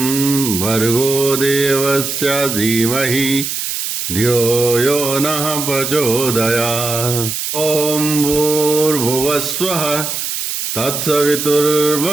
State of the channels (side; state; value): right; noise; hiss, 3 dB below the sound